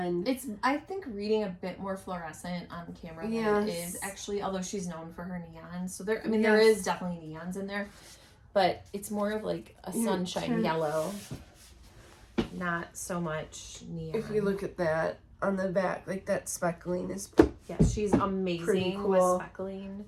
it's, I think, reading a bit more fluorescent on camera than it is actually, although she's known for her neons. So there, I mean, there is definitely neons in there, but it's more of like a sunshine yellow, not so much neon. If you look at that on the back, like that speckling is she's amazing cool. with speckling.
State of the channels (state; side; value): identical; both; correlation 1.00